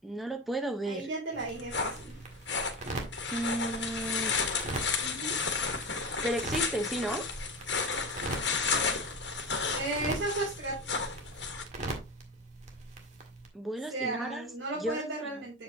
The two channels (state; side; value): normal; both; correlation 0.23